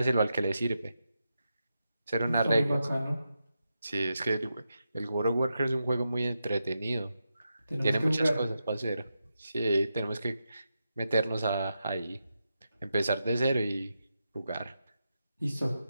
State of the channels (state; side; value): inverted; both; correlation -0.87